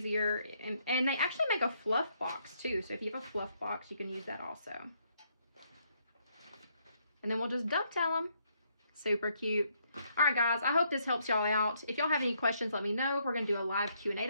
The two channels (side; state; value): both; inverted; correlation -0.72